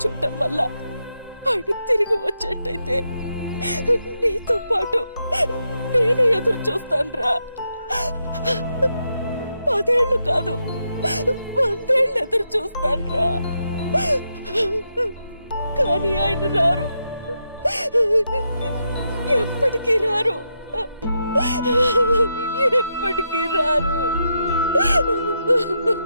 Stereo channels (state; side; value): inverted; both; correlation -0.83